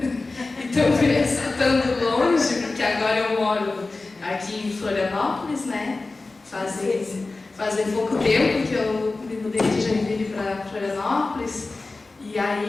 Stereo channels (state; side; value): quieter; right; 3.5 dB